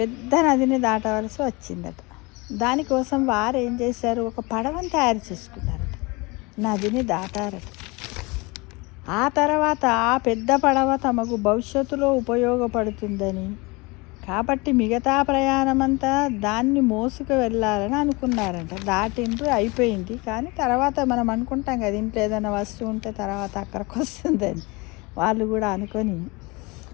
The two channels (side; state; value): right; quieter; 25.9 dB